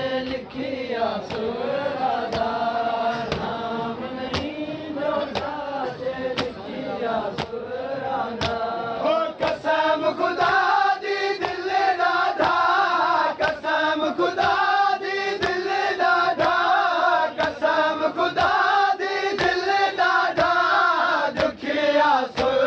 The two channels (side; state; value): both; identical; correlation 1.00